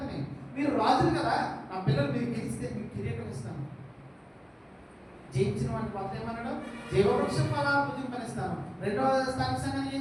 మీరు రాజులు కదా. నా పిల్లలు మీరు గెలిస్తే మీకు కిరీటం ఇస్తాను. జయించిన వాడిని కొత్త ఏమన్నాడు? జీవవృక్షం ఫలాలు భుజింపనిస్తాను. రెండవ స్థానిక సంఘాన్ని ఏం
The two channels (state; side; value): identical; both; correlation 1.00